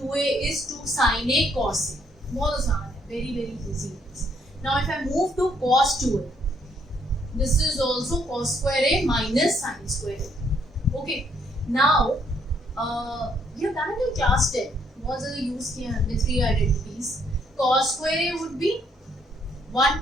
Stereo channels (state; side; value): normal; both; correlation 0.69